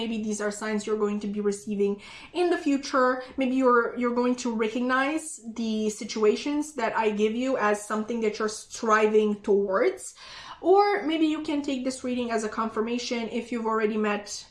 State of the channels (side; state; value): both; identical; correlation 1.00